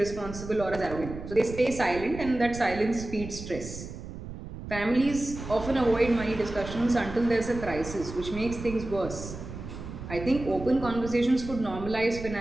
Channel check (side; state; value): right; noise; rumble, 10 dB below the sound